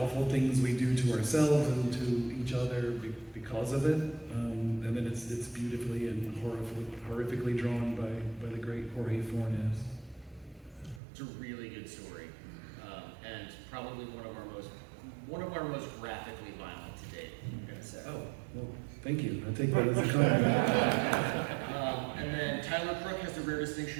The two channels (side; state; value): left; drops out; at 11.0 s